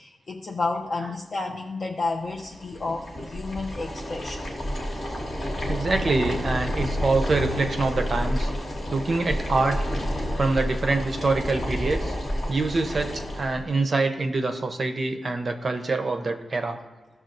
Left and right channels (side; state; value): both; normal; correlation 0.91